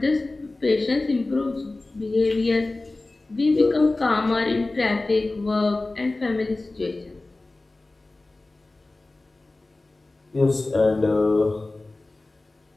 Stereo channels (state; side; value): quieter; right; 3.1 dB